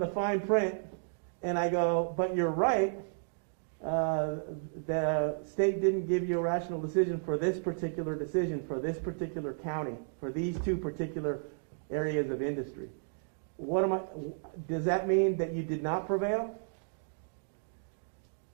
fine print, and I go, but you're right. The state didn't give you a rational decision for this particular county, for these two particular areas of industry. Does that mean that you did not prevail?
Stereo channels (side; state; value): left; silent; digital silence